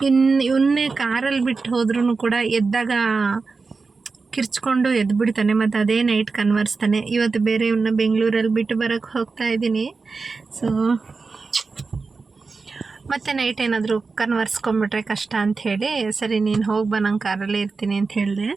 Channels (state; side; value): quieter; left; 4.4 dB